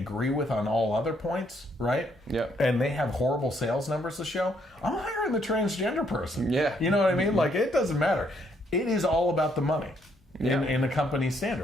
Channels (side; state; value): both; normal; correlation 0.71